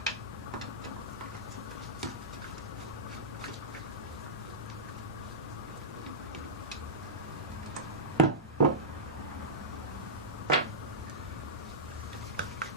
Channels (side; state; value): both; normal; correlation -0.15